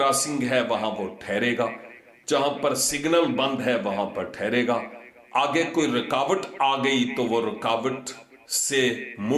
है वहां वो ठहरेगा, जहां पर सिग्नल बंद है वहां पर ठहरेगा। आगे कोई रुकावट आ गई तो वो रुकावट से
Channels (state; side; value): identical; both; correlation 1.00